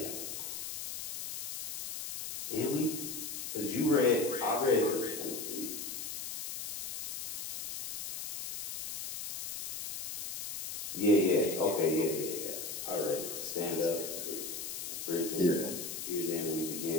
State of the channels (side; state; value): left; noise; hiss, 4 dB below the sound